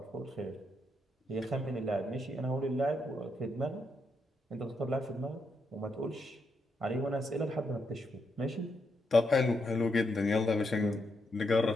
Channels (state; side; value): normal; both; correlation 0.80